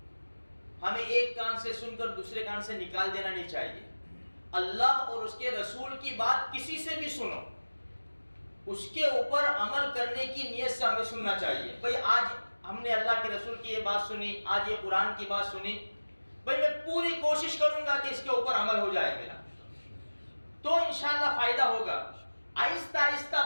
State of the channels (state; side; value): inverted; both; correlation -1.00